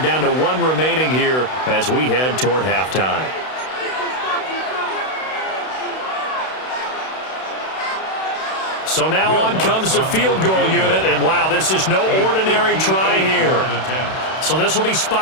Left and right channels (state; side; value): late; right; 32 ms